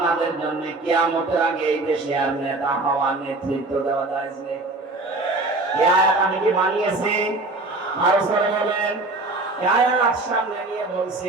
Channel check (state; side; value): quieter; left; 3.0 dB